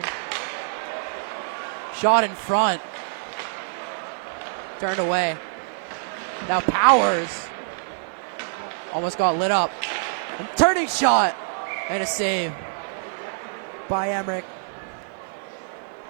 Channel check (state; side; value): silent; left; 61 dB below the other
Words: Shot in front. Turned away. Now Powers almost got lit up. And turning shot. And a save by Emmerich.